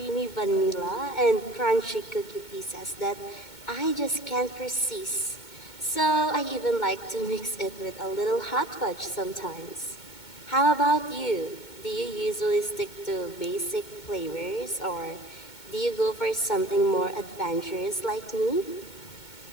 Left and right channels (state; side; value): late; right; 2.2 ms